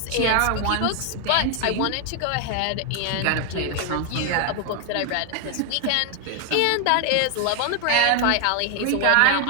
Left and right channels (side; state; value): both; different; correlation 0.01